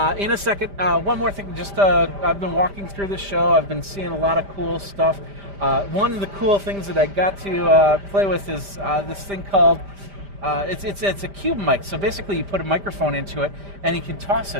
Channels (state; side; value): late; left; 5.0 ms